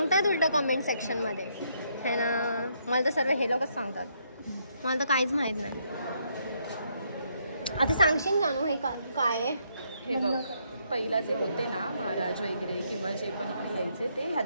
उलट कमेंट सेक्शन मध्ये है ना. मला तर सर्व हे लोकच सांगतात, मला तर काहीच माहित नाही. आता सांगशील जानू हे काय आहे? हे बघ, पहिला जे होते ना महाराज वगैरे किंवा जे पण इकडे यायचे ते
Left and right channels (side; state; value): both; inverted; correlation -0.73